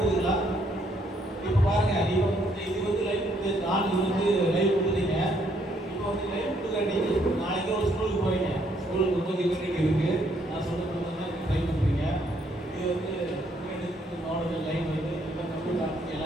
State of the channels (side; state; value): both; normal; correlation 0.70